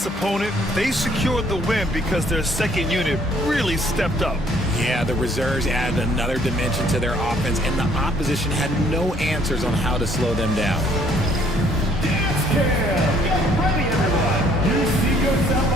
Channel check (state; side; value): normal; both; correlation 0.63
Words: opponent, they secured the win because their second unit really stepped up. Yeah, the reserves added another dimension to their offense, and the opposition had no answers on how to slow them down. Dance Cam! Get ready, everyone! You see yourself